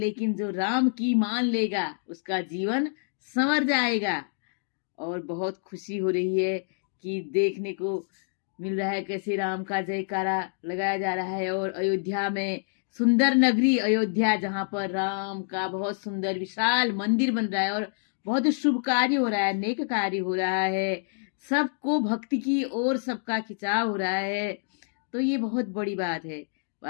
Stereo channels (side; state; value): right; silent; digital silence